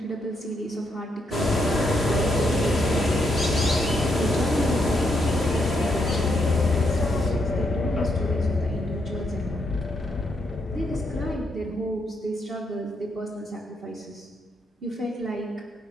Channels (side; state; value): both; normal; correlation 0.78